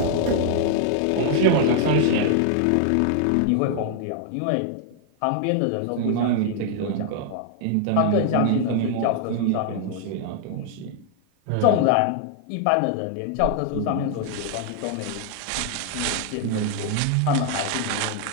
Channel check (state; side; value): different; both; correlation 0.00